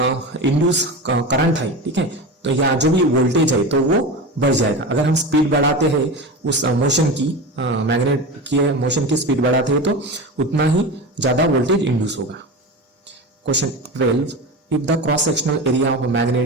इंड्यूस करंट है, ठीक है, तो या जो भी वोल्टेज है तो वो बढ़ जाएगा। अगर हम स्पीड बढ़ाते हैं उस मोशन की, मैग्नेट की मोशन की स्पीड बढ़ाते हैं तो उतना ही ज्यादा वोल्टेज इंड्यूस होगा। Question 12. If the cross-sectional area of a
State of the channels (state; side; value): normal; both; correlation 0.26